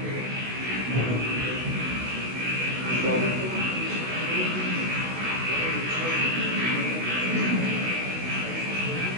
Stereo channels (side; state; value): left; late; 16 ms